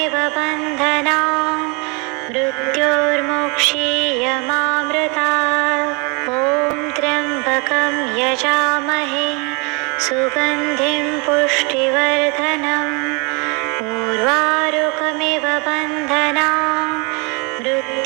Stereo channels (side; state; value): left; quieter; 31.2 dB